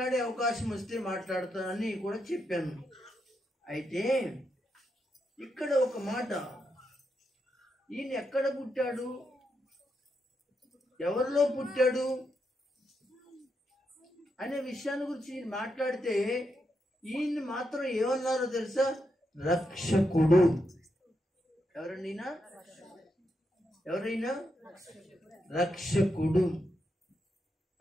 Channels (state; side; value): normal; both; correlation 0.83